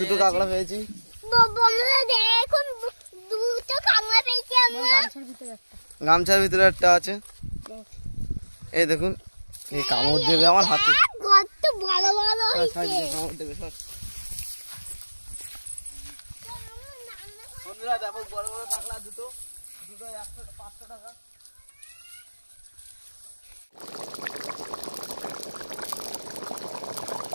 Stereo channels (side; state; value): both; inverted; correlation -1.00